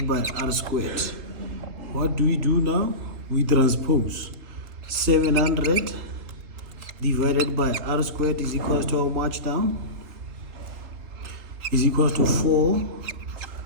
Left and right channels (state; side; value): late; left; 3.8 ms